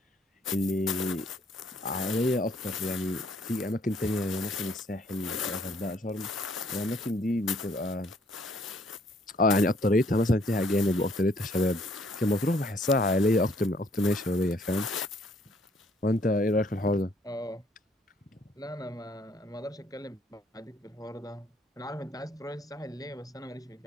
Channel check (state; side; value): normal; both; correlation 0.65